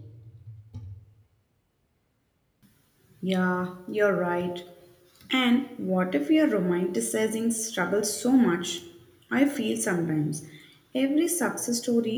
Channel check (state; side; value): identical; both; correlation 1.00